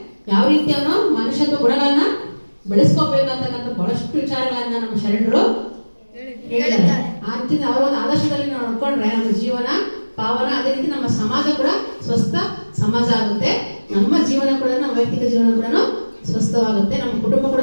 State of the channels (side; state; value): both; inverted; correlation -1.00